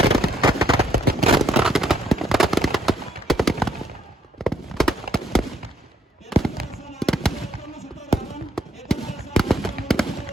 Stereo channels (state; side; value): normal; both; correlation 0.69